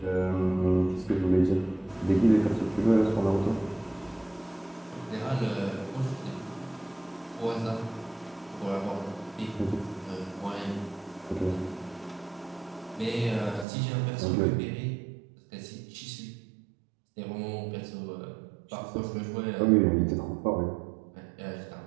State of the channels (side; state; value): left; drops out; at 13.7 s